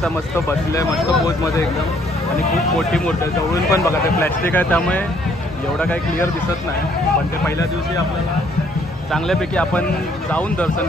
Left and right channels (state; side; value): normal; both; correlation 0.65